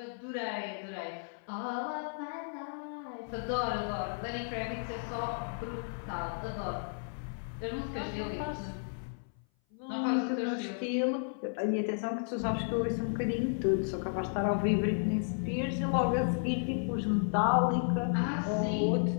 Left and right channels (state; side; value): silent; right; 56 dB below the other